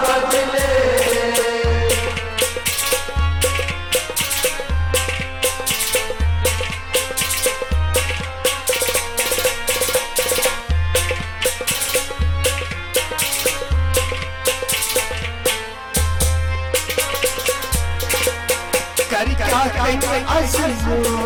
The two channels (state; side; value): identical; both; correlation 1.00